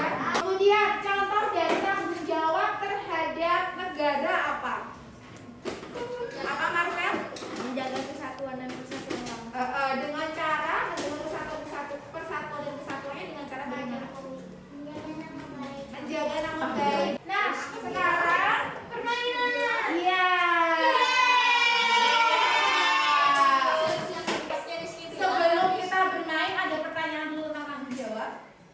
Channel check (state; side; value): identical; both; correlation 1.00